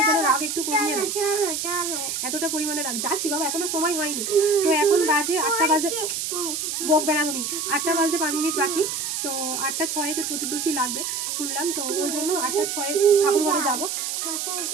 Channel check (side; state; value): right; noise; hiss, 3 dB below the sound